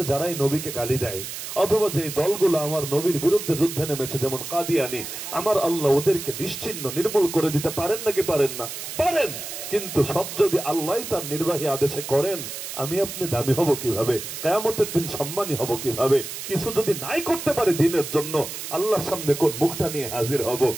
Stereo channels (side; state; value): right; noise; hiss, 8 dB below the sound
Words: যারাই নবীকে গালি দেয়, অথবা যে দলগুলো আমার নবীর বিরুদ্ধে যুদ্ধে নেমেছে, যেমন কাদিয়ানি, আমার আল্লাহ ওদেরকে নিশ্চিহ্ন নির্মূল করে দিতে পারেন নাকি পারেন না? পারেন। কিন্তু সব যদি আল্লাহ তার নির্বাহী আদেশে করেন, আমি আপনি দামি হব কিভাবে? কিয়ামতের দিন সম্মানী হব কিভাবে? কিছু যদি নাই করতে পারে দিনের জন্য, আল্লাহর সামনে কোন মুখটা নিয়ে হাজির হব?